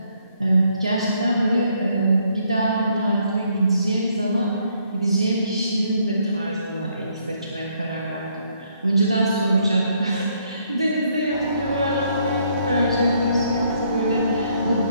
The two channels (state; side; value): inverted; both; correlation -0.70